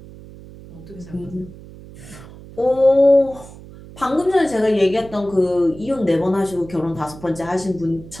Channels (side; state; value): right; noise; hum, 18 dB below the sound